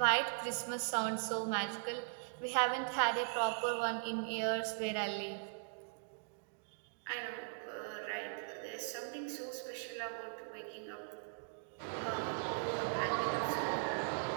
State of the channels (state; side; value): silent; left; digital silence